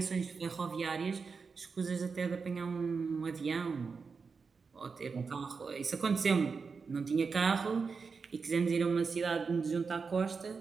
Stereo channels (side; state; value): left; quieter; 5.1 dB